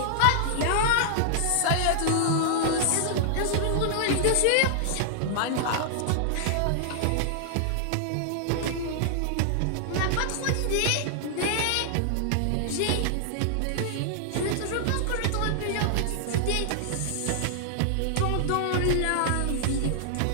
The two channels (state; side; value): different; both; correlation -0.01